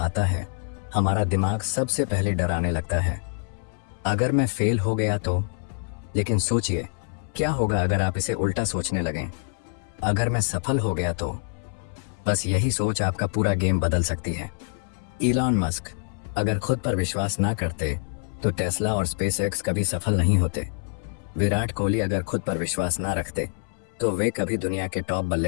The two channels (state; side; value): silent; right; 61 dB below the other